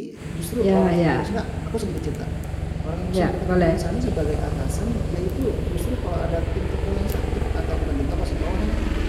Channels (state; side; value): identical; both; correlation 1.00